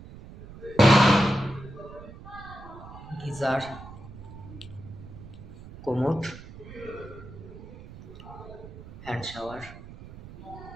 Geyser, commode, hand shower.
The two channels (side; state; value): right; noise; rumble, 15 dB below the sound